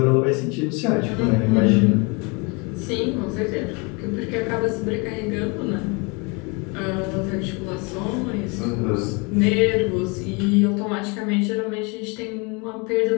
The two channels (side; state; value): right; quieter; 30.2 dB